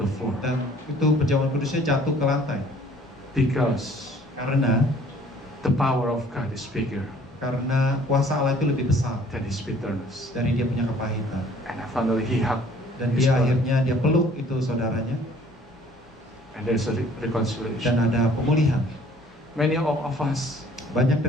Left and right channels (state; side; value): normal; both; correlation 0.55